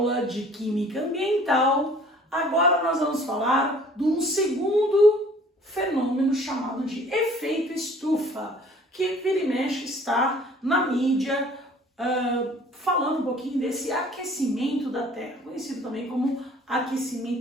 de Química Ambiental, agora nós vamos falar de um segundo fenômeno chamado de efeito estufa, que vira e mexe está na mídia, falando um pouquinho desse aquecimento da Terra, conhecido também como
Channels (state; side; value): normal; both; correlation 0.52